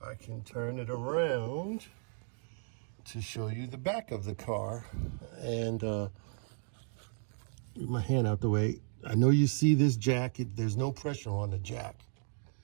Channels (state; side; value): silent; left; 55 dB below the other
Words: I can turn it around to show you the back of the car. And get my hand out the way. I know you see this jack. There's no pressure on the jack.